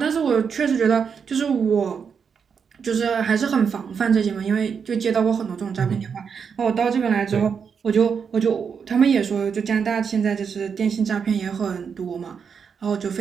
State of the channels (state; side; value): quieter; left; 6.5 dB